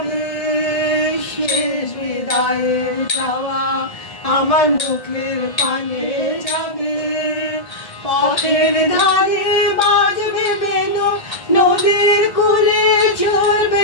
শেষ বিদায়ের চাওয়া আমার মুখের পানে যাবে। পথের ধারে বাজবে বেনু, নদীর কূলে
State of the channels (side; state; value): right; late; 1.7 ms